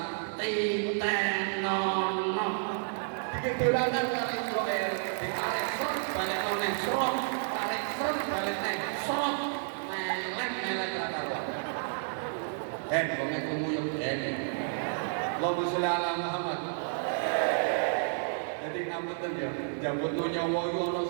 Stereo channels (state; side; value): silent; left; digital silence